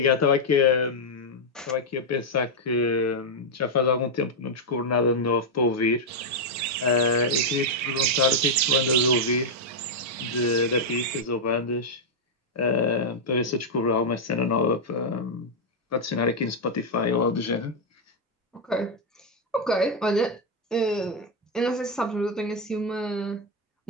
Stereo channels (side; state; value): both; normal; correlation -0.02